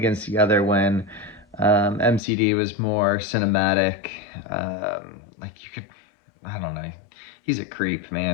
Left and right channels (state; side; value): drops out; right; at 2.2 s